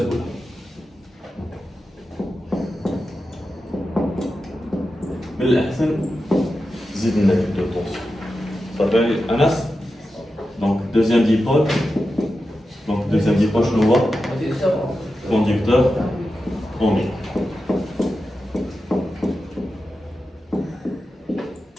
من الأحسن زيد لنا de tension. Ça fait Anas. Donc deuxième dipôle. Donc deuxième dipôle, je le vois. Conducteur ohmique.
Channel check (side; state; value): both; normal; correlation 0.91